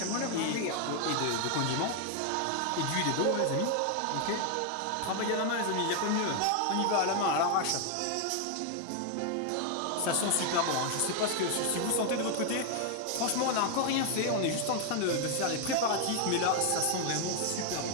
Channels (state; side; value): different; both; correlation 0.00